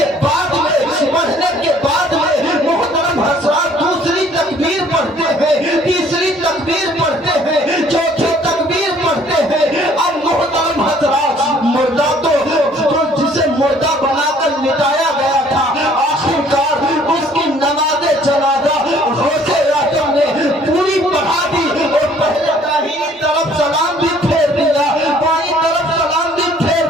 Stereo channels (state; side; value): normal; both; correlation 0.58